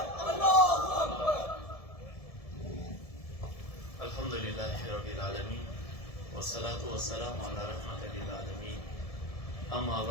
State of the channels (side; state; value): right; late; 1.7 ms